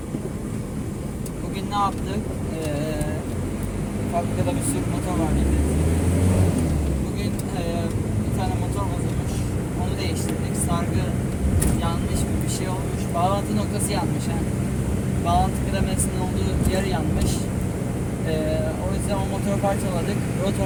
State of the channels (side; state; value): both; identical; correlation 1.00